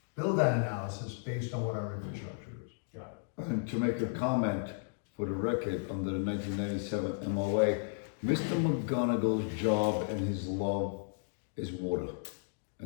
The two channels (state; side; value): silent; right; digital silence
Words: build that analysis based on what our infrastructure is. Got And to make a comment for the record, under the 1997 MOA, Mr. McGonagall's job and his love is water